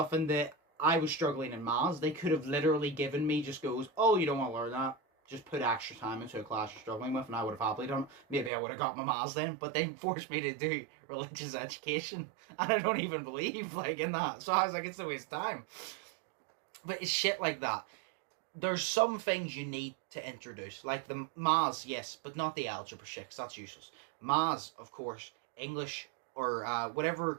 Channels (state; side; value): drops out; left; at 8.5 s